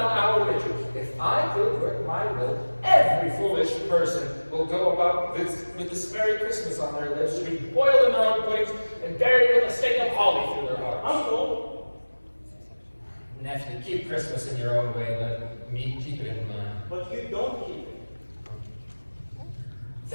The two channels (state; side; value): inverted; both; correlation -1.00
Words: an hour richer. If I could work my will, every foolish person will go about with this Merry Christmas on their lips, to be boiled in their own puddings and buried with a stake of holly through their hearts. Uncle! Nephew, keep Christmas in your own way, let me keep it in mine. But you don't keep it.